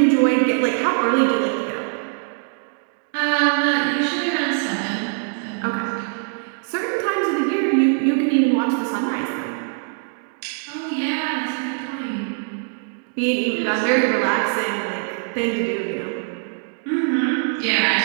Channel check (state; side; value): silent; left; 60 dB below the other